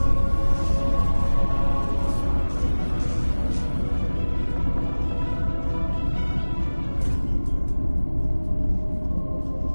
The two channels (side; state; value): both; inverted; correlation -1.00